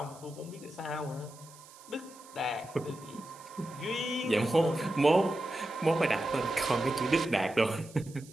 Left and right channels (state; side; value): noise; right; hiss, 21 dB below the sound